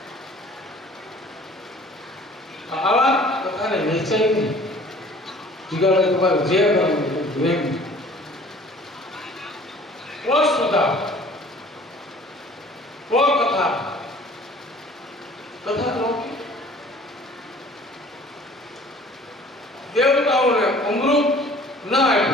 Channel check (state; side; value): normal; both; correlation 0.50